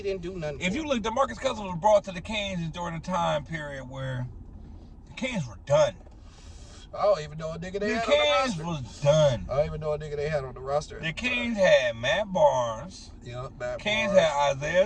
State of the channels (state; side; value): identical; both; correlation 1.00